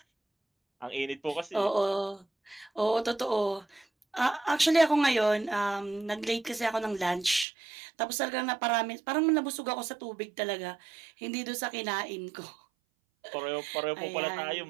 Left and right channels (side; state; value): left; drops out; at 7.5 s